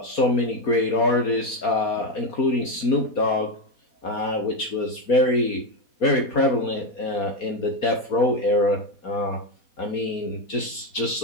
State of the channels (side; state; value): right; late; 4.2 ms